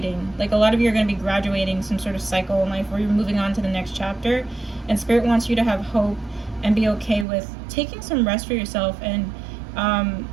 Like, a lot of you are going to be graduating some sort of cycle in life where you're moving on to the next chapter, and Spirit wants you to have hope and be okay with taking some rest for yourself, and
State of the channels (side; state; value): left; drops out; at 7.2 s